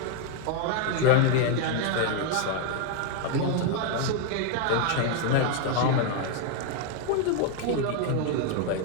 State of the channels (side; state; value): both; different; correlation 0.00